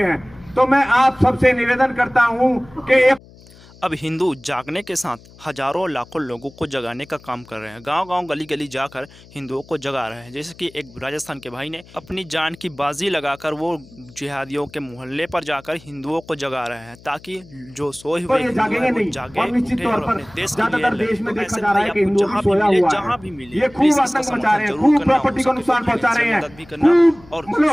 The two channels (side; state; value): left; noise; hum, 23 dB below the sound